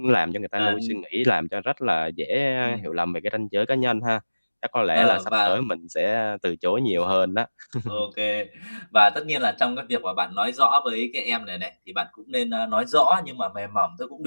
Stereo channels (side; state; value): both; inverted; correlation -1.00